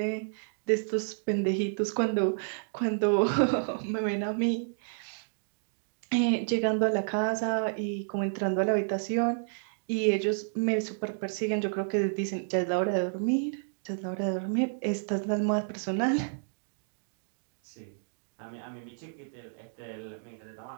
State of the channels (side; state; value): left; silent; digital silence